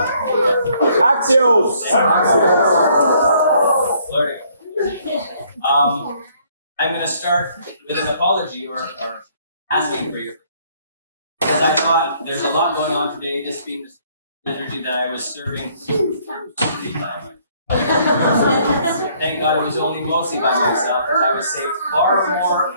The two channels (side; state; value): both; inverted; correlation -0.64